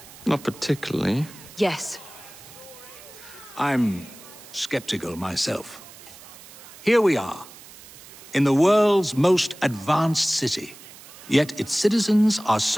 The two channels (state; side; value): noise; right; hiss, 19 dB below the sound